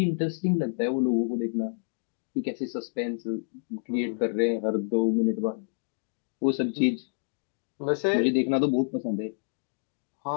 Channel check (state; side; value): silent; right; digital silence